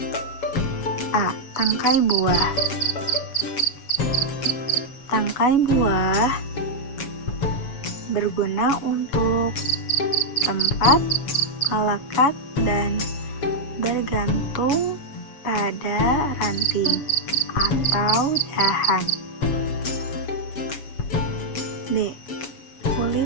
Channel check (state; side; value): late; right; 7.2 ms